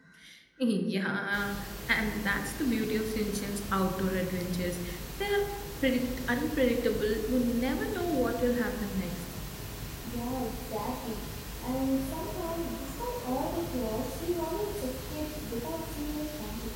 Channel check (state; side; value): identical; both; correlation 1.00